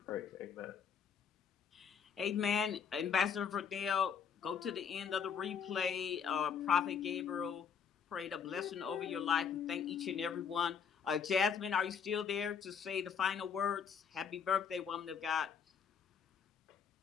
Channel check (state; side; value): quieter; right; 7.0 dB